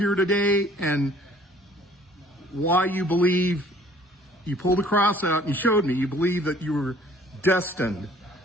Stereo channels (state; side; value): normal; both; correlation 0.56